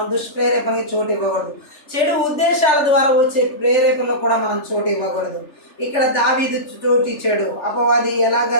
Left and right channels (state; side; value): late; right; 3.4 ms